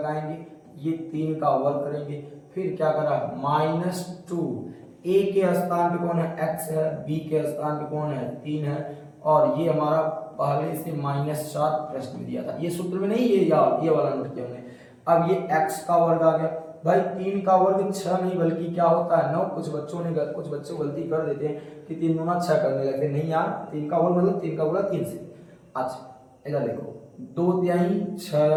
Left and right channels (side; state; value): both; identical; correlation 1.00